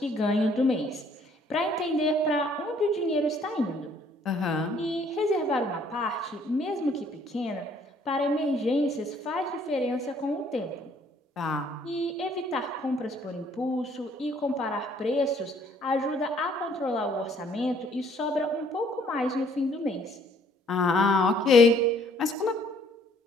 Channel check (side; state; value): both; normal; correlation 0.62